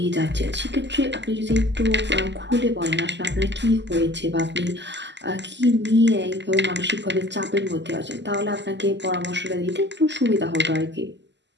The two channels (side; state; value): left; late; 0.51 ms